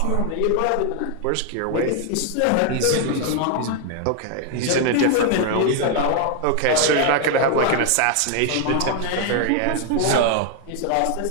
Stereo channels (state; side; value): different; both; correlation 0.00